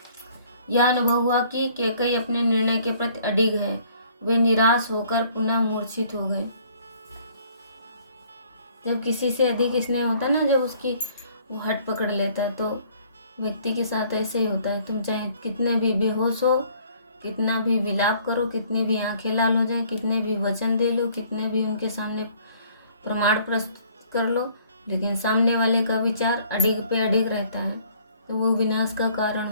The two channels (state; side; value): inverted; both; correlation -0.59